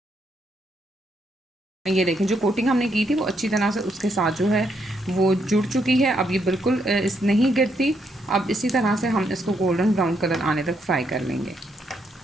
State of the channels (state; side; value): normal; both; correlation 0.76